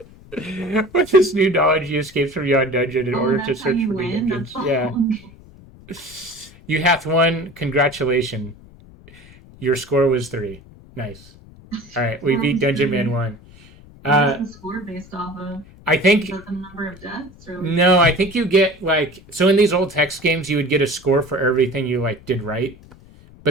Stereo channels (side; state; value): left; noise; rumble, 23 dB below the sound